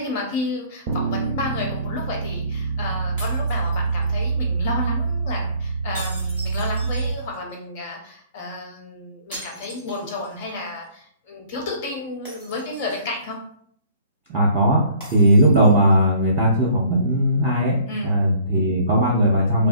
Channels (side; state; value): both; inverted; correlation -0.58